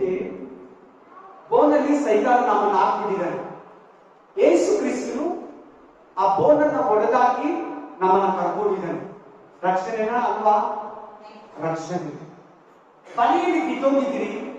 ಬೋನಲ್ಲಿ ಸೈತಾನ ನಮ್ಮನ್ನು ಹಾಕ್ಬಿಟ್ಟಿದ್ದಾನೆ. ಯೇಸು ಕ್ರಿಸ್ತನು ಆ ಬೋನನ್ನ ಒಡೆದಾಕಿ ನಮ್ಮನ್ನ ಕರ್ಕೊಂಡಿದ್ದಾನೆ. ರಕ್ಷಣೆನ ಅಲ್ವಾ? ರಕ್ಷಣೆ. ಬಲೆಯಲ್ಲಿ ಬಿದ್ದೋಗಿದ್ರಿ,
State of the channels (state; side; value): identical; both; correlation 1.00